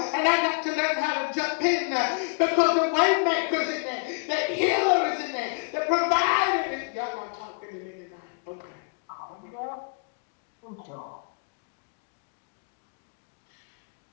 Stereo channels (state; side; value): quieter; right; 37.0 dB